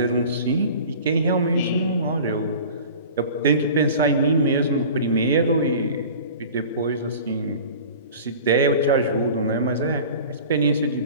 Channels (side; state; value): both; inverted; correlation -0.40